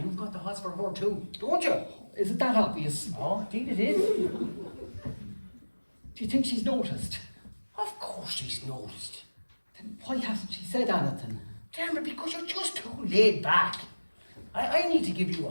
you've got the hots for her too, don't you? Is it that obvious? Oh, indeed it is. Do you think she's noticed? Of course she's noticed. Then why hasn't she said anything? Damn it, because you're just too laid back. I need to give you a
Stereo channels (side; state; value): both; inverted; correlation -1.00